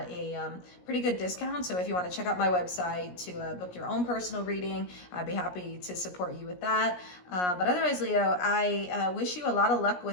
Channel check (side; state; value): right; late; 17 ms